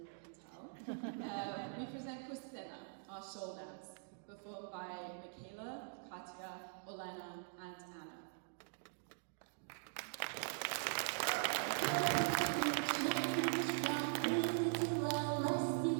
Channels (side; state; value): left; silent; digital silence